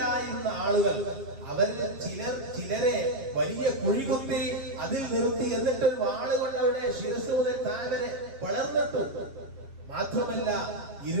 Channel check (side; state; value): left; late; 7.3 ms